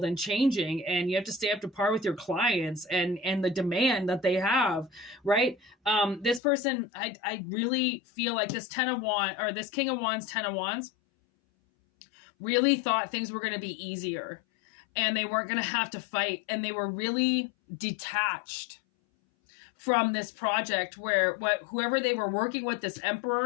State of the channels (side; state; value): right; drops out; at 6.4 s